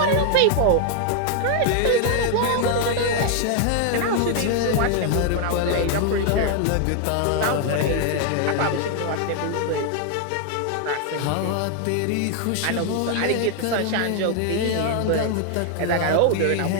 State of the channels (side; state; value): both; different; correlation 0.00